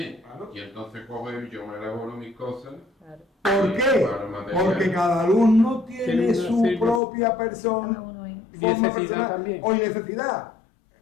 Claro. Y entonces cojo y yo me elaboro mis cosas. ¿Por qué? Porque cada alumno tiene Tiene su una- sí, pues. propia cada persona, uno ahí. forma Necesidad personal también. o necesidad.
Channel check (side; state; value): right; drops out; at 7.0 s